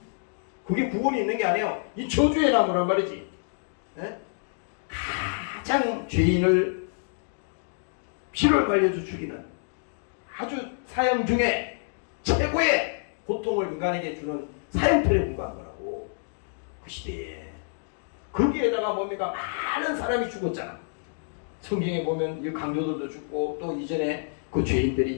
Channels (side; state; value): right; silent; digital silence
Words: 그게 구원이 있는 게 아니에요. 이 저주의 나무란 말이지. 네? 가장 죄인을 피를 말려서 죽이는 아주 사형 중에 최고의 고통을 인간에게 주는 사형틀에 불과한 거라고. 그 시대에. 거기에다가 뭡니까? 많은 사람이 죽었잖아. 성경에 보면 이 강도들도 죽고 또 이전에 그